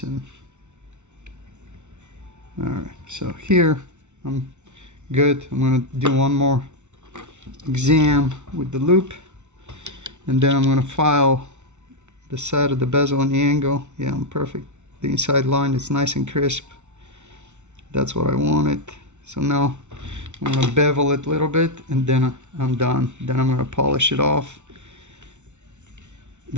and all right. So here I'm good. I'm gonna do one more exam with the loop, and then I'm gonna file the side of the bezel and the angle. Yeah, I'm perfect. The inside line is nice and crisp. That's what I wanted. So now I'm gonna bevel it a little bit, and then I'm done. Then I'm gonna polish it off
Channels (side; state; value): left; late; 0.83 ms